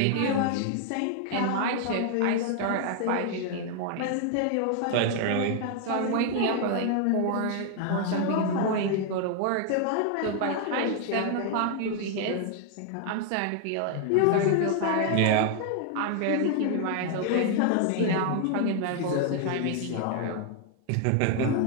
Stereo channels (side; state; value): both; different; correlation 0.00